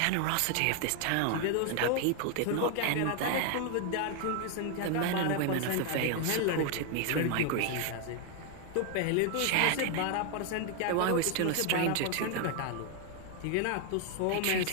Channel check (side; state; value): both; different; correlation 0.01